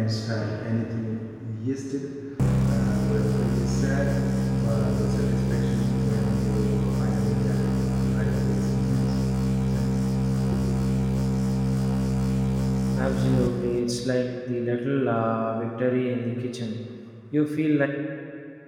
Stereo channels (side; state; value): both; identical; correlation 1.00